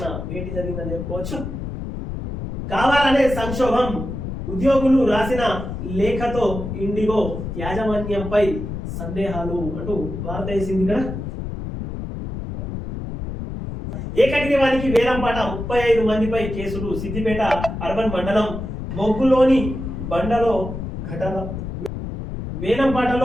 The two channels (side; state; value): left; noise; rumble, 6 dB below the sound